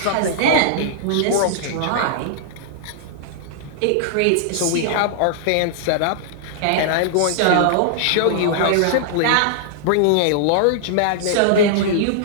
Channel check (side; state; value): both; different; correlation -0.01